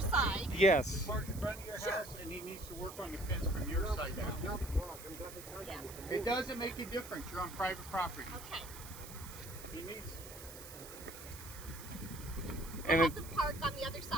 side? Yes. Park in front of your Sure. house, and he needs to work on the fence from your side now. I'm dropping country Yeah. mix. It doesn't make a difference. You're on private property. Okay. He needs. And We'll it, have them park on the other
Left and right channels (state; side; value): noise; right; hiss, 14 dB below the sound